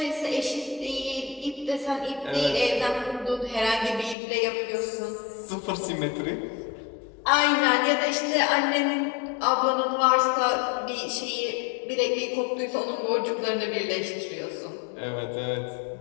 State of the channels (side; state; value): right; drops out; at 4.2 s